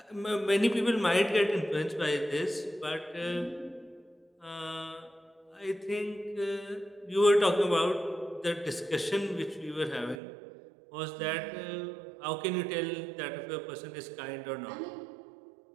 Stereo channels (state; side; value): drops out; left; at 10.2 s